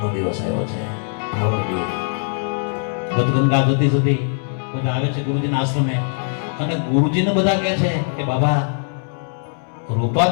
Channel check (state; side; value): silent; right; 65 dB below the other